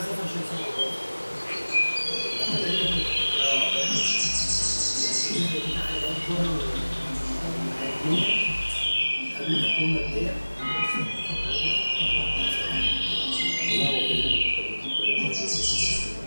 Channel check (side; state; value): both; inverted; correlation -1.00